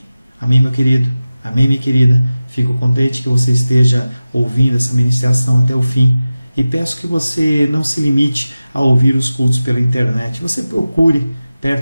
Amém, meu querido. Amém, minha querida. Fico contente que você esteja ouvindo essa ministração até o fim. E peço que você não se limite a ouvir os cultos pela internet. Você procure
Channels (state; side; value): inverted; both; correlation -0.96